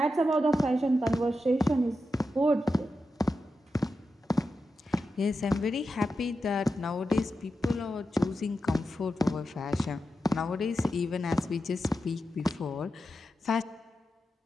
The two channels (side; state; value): both; normal; correlation 0.89